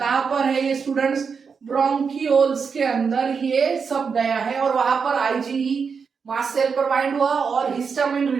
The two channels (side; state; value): left; quieter; 5.8 dB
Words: पर है ये स्टूडेंट्स? ब्रोंकियोल्स के अंदर ये सब गया है और वहां पर आईजीई मास्ट सेल पर बाइंड हुआ और हिस्टामिन